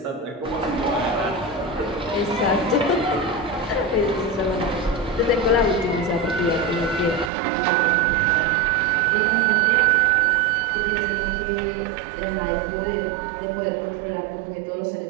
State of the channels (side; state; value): left; drops out; at 7.3 s